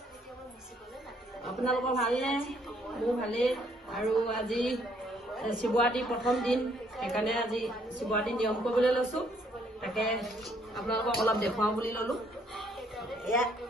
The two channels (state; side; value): normal; both; correlation 0.67